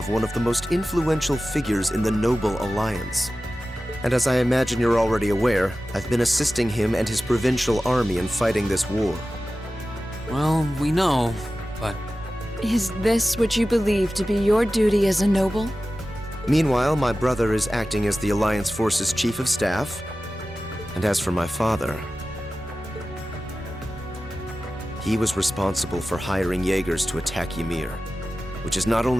one of the most influential figures in the Noble Alliance. And as I imagine you're already aware, I've been assisting him and his provincial army in fighting this war. Well, we know, but... Is this what you believe to be your duty as a noble? Meanwhile, my brother is acting as the Alliance Force's Chief of Staff. And as for my father, he was responsible for hiring Jaegers to attack Ymir, which is not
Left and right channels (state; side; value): normal; both; correlation 0.95